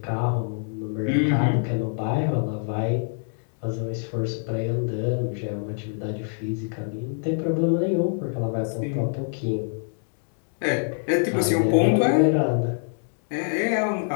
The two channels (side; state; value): right; silent; digital silence